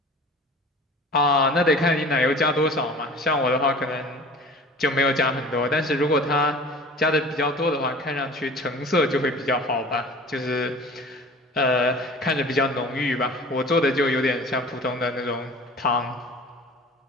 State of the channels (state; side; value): normal; both; correlation 0.42